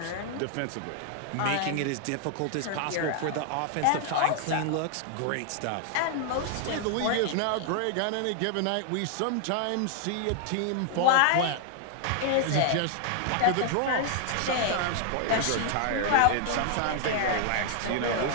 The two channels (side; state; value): both; different; correlation 0.00